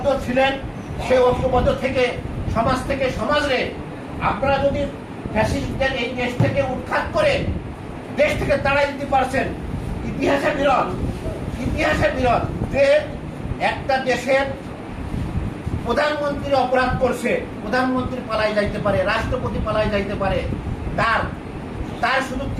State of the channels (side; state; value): both; identical; correlation 1.00